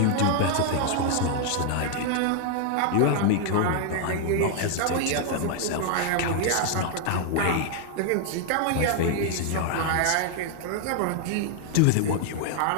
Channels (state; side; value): different; both; correlation 0.00